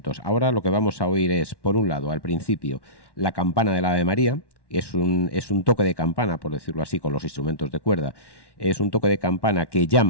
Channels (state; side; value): late; right; 1.1 ms